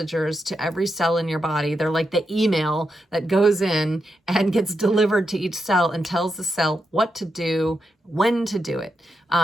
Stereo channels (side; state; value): both; normal; correlation 0.85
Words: to every cell in your body. They're like the email that goes in and gets delivered to each cell and tells the cell what to do, when to do it.